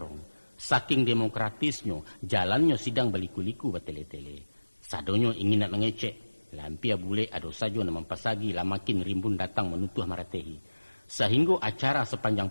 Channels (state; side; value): inverted; both; correlation -1.00